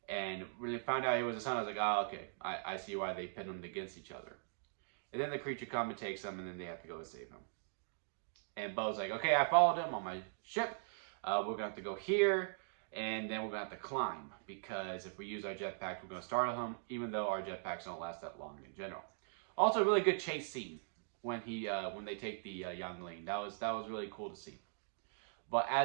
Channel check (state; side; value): silent; left; digital silence